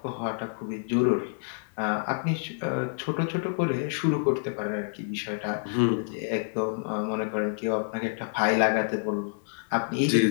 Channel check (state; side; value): silent; right; digital silence